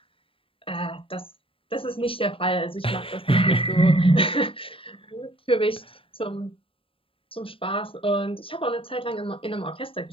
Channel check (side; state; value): right; late; 0.26 ms